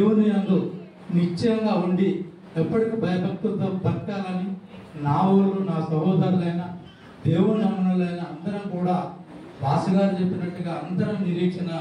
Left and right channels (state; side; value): identical; both; correlation 1.00